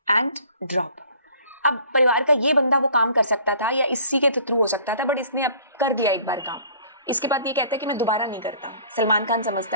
एंड ड्रॉप। अब परिवार का ये बंदा वो काम कर सकता था या इसी के थ्रू हो सकता था, बट इसने अब कर दिया एक बार काम। इसके बाद ये कहता है कि मैं दोबारा नहीं करता। सलमान खान समझता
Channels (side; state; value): both; inverted; correlation -0.51